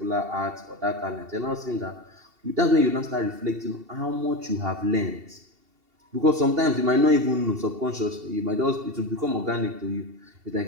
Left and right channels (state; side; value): late; left; 2.7 ms